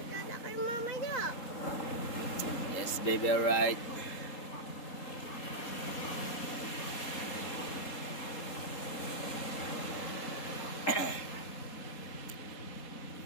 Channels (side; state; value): right; late; 3.8 ms